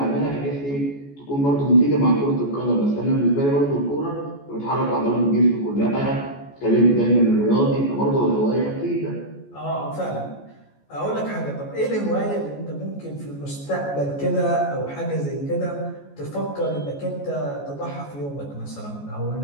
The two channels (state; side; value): late; right; 14 ms